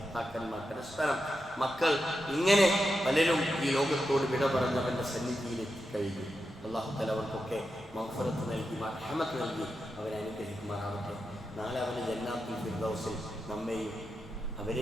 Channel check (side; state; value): both; normal; correlation 0.88